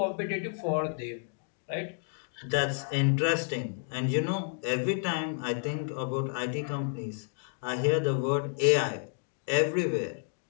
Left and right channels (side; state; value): right; silent; digital silence